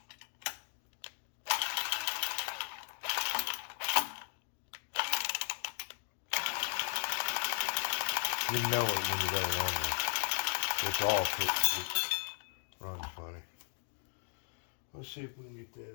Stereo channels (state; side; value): silent; right; 54 dB below the other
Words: You know it when you got it on there. It's off. It runs funny. Let's see if we can get